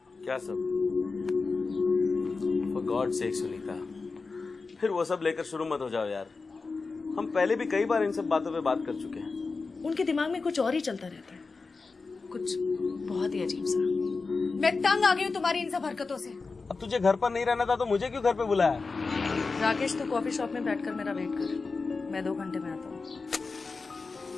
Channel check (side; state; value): right; quieter; 4.2 dB